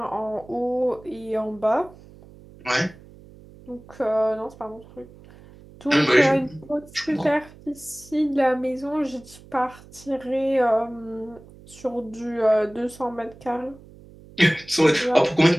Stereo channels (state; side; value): noise; right; hum, 22 dB below the sound